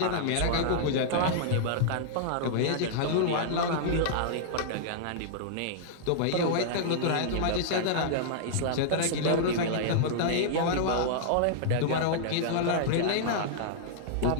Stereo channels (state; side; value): different; both; correlation -0.02